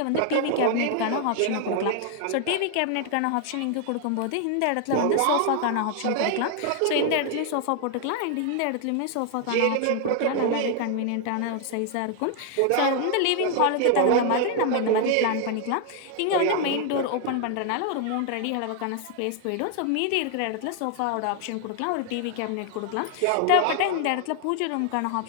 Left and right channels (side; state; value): both; different; correlation 0.00